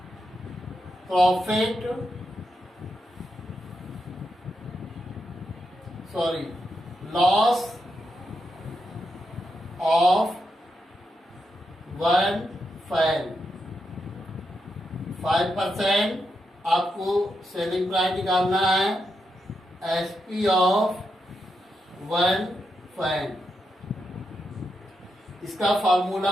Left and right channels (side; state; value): both; normal; correlation 0.84